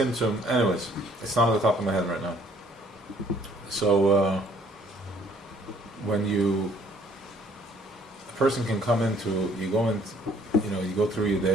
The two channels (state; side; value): normal; both; correlation 0.61